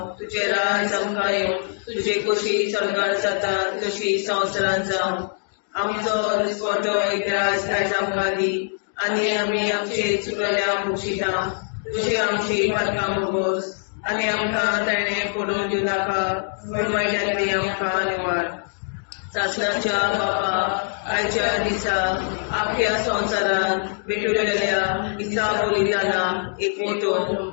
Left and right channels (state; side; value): silent; right; digital silence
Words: तुजें राज आमकां येवं, तुजे कशी सरकार जाता तशी संवसारांत जावं. आमचो दिसवटो एकदांच आयज आमकां दी आनी आमी आमचे चुकल्यांक बक्षिता. तुजी आमची पातकां भोगोस आनी आमकां ताणें पडून दिवं नाका पण वायट्यांतली आमकां निवार. सतनाच्या बाबा आयच्या दिसा आपल्या संवसारांत भेटलेल्या दिसा बलिदानाक एकवटून